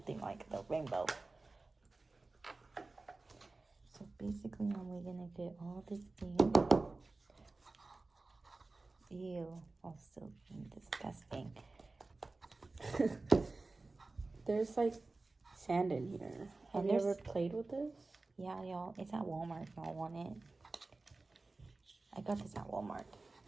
like the rainbow. So basically, we're gonna get all this thing. Ew, I'm still being disgusting. There's like sand in here. Have you ever played with this? Yeah, y'all. It's at Walmart if y'all want it. I got this at Walmart.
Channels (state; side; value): quieter; left; 3.4 dB